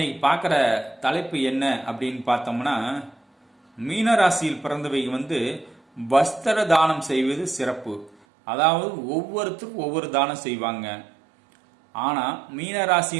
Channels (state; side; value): drops out; left; at 8.2 s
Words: பார்க்குற தலைப்பு என்ன அப்படின்னு பார்த்தோம்னா, மீனராசியில் பிறந்தவை வஸ்திர தானம் செய்வது சிறப்பு. அதாவது ஒவ்வொருத்தருக்கும் ஒவ்வொரு தானம் செய்வாங்க. ஆனால்